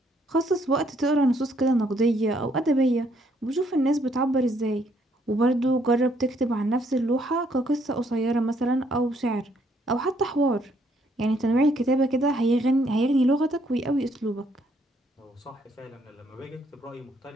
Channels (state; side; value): normal; both; correlation 0.69